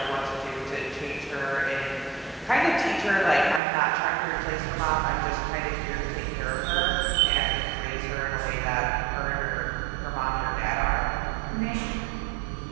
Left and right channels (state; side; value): drops out; left; at 3.6 s